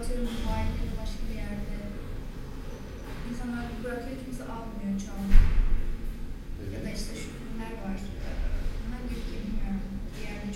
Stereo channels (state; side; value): identical; both; correlation 1.00